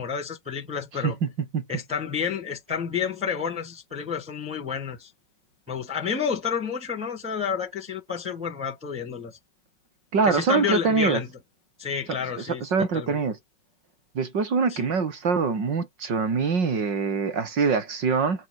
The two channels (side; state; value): left; late; 5.5 ms